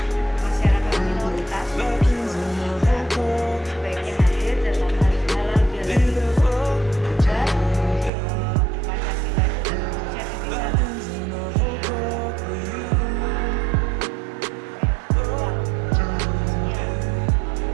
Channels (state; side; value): drops out; left; at 8.1 s